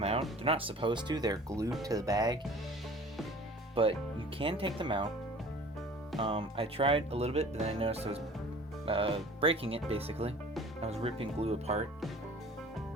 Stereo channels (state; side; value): normal; both; correlation 0.46